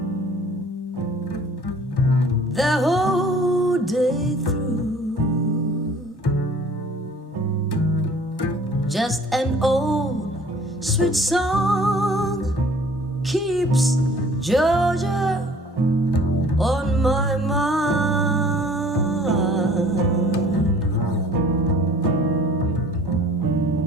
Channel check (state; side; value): normal; both; correlation 0.51